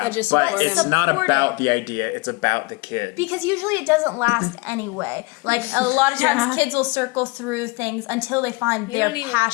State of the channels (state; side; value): quieter; right; 25.7 dB